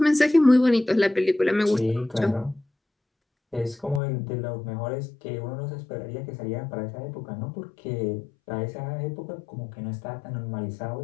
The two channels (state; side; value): drops out; right; at 4.0 s